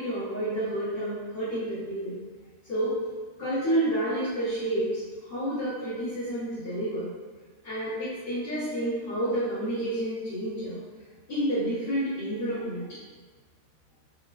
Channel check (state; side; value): late; right; 13 ms